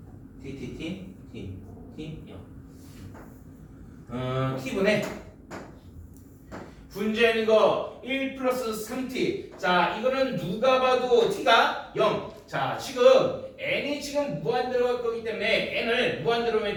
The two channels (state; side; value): identical; both; correlation 1.00